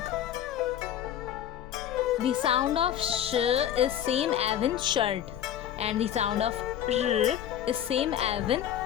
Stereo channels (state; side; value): quieter; right; 10.5 dB